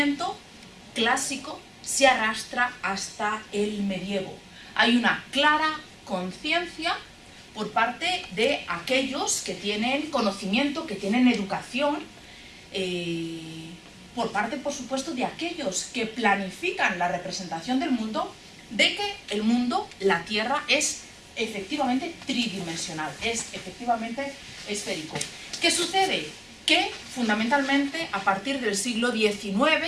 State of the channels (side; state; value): both; identical; correlation 1.00